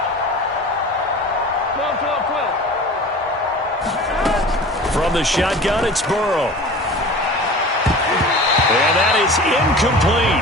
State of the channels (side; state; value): both; normal; correlation 0.38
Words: From the shotgun, it's Burrow. And that is